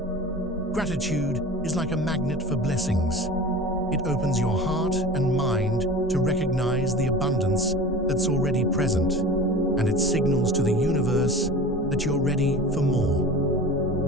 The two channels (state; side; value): normal; both; correlation 0.36